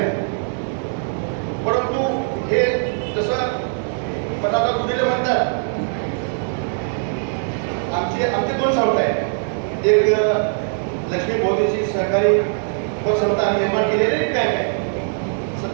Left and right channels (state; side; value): silent; left; digital silence